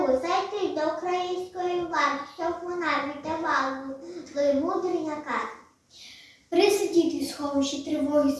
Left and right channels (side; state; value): both; identical; correlation 1.00